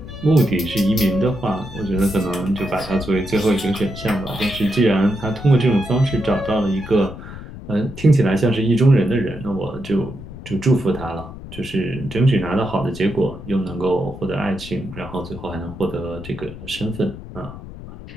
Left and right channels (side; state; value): left; noise; rumble, 13 dB below the sound